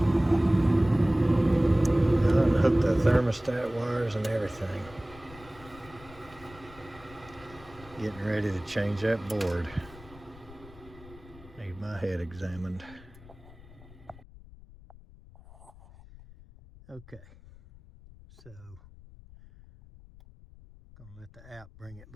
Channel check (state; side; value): noise; left; rumble, 20 dB below the sound